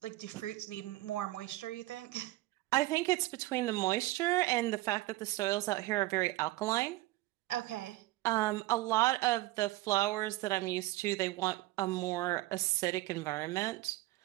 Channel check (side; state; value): left; quieter; 18.7 dB